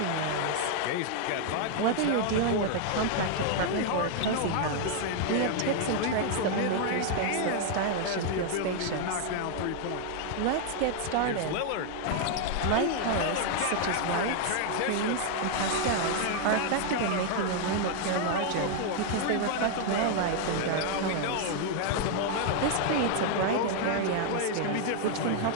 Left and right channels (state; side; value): different; both; correlation 0.00